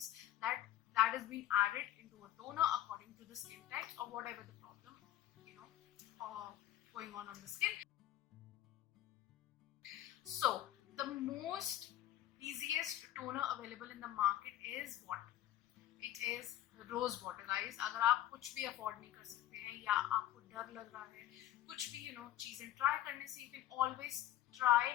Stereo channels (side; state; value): right; quieter; 13.1 dB